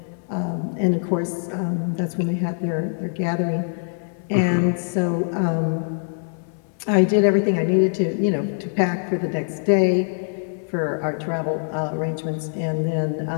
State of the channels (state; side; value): silent; right; 63 dB below the other